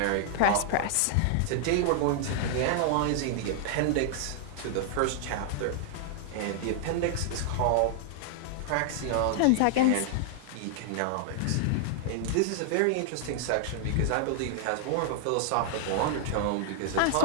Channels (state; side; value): different; both; correlation -0.01